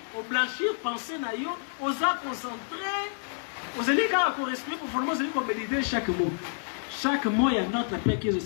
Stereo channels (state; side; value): silent; right; digital silence